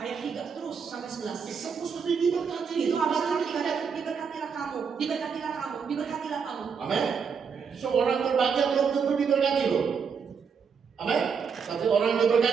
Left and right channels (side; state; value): left; quieter; 6.2 dB